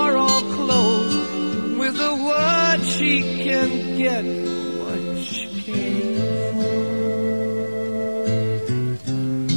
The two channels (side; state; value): both; inverted; correlation -1.00